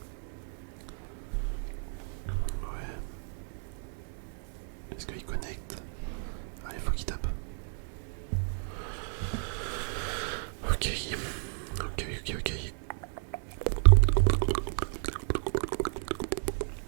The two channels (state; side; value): silent; left; 56 dB below the other